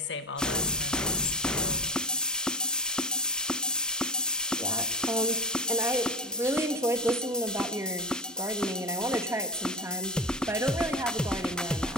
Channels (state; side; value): normal; both; correlation 0.27